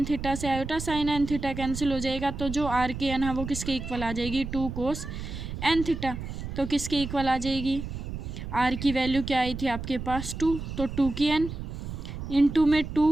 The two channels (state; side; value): noise; right; rumble, 7 dB below the sound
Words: theta से iota sine n theta cancel हो जाएगा। तो जो आर के n है वो किसके इक्वल आ जाएगी, 2 कोस n थीटा। तो किसके इक्वल आ जाएगी, आर की वैल्यू क्या आई थी आपके पास 2, तो 2 की n इंटू में